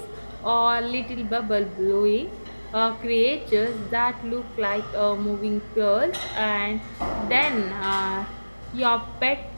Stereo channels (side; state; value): both; inverted; correlation -1.00